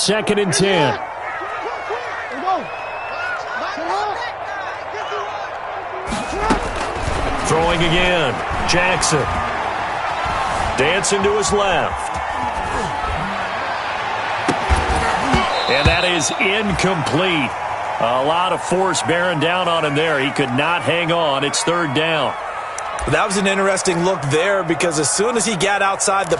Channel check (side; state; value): both; identical; correlation 1.00